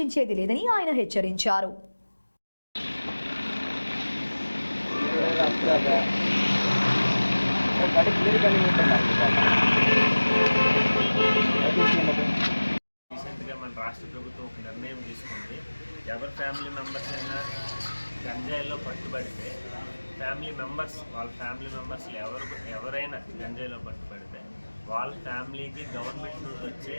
లేదని ఆయన హెచ్చరించారు. రీసెంట్గా మన రాష్ట్ర ప్రభుత్వం ఒక నిర్ణయం తీసుకుంది. ఎవరి ఫ్యామిలీ మెంబర్స్ అయినా గంజాయిలో పట్టుబడితే వాళ్ళ ఫ్యామిలీ మెంబర్స్ ఎవరైనా గంజాయిలో పట్టుబడితే వాళ్ళ ఫ్యామిలీకి గవర్నమెంట్ నుండి వచ్చే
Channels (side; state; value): both; inverted; correlation -1.00